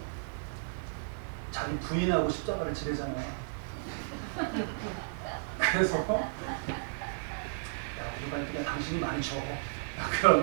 자기 부인하고 십자가를 지르잖아요. 그래서 야 우리가 그냥 당신이 많이 줘.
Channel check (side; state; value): left; silent; digital silence